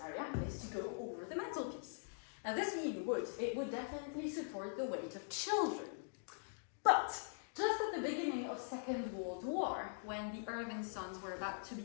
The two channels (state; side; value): silent; right; digital silence